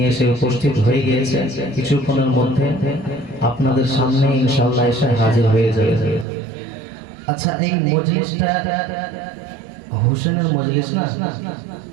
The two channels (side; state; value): left; drops out; at 6.2 s